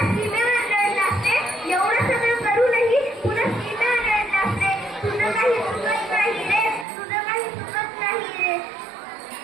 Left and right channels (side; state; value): left; drops out; at 6.9 s